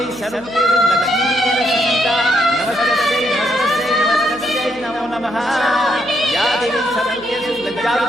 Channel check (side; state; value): right; noise; hum, 23 dB below the sound